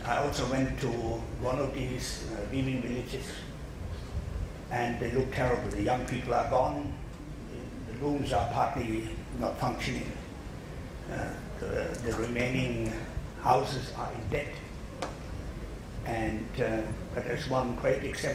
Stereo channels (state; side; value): identical; both; correlation 1.00